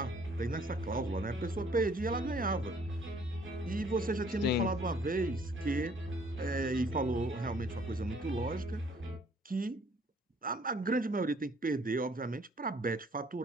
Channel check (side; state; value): both; normal; correlation 0.60